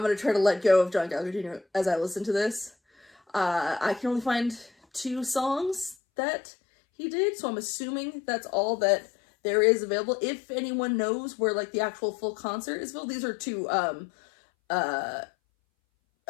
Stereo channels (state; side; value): drops out; right; at 6.0 s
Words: going to try to let go of John Gallagher Jr. as I listen to this. I can only find 2 songs that he did, so I'm assuming that's all that there is available. If anyone knows where, like, the actual full concert is available, these are 2,